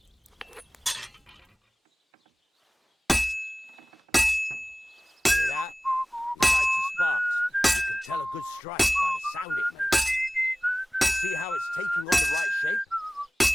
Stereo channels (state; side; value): normal; both; correlation 0.98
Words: Hear that? Besides the sparks, you can tell a good strike by the sound it makes. See how it's taking on the right shape?